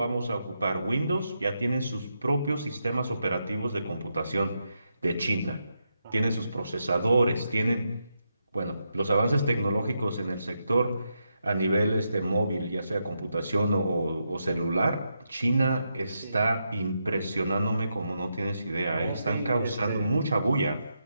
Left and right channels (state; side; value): inverted; both; correlation -0.84